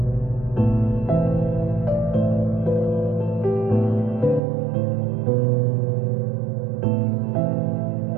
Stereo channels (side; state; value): left; drops out; at 4.4 s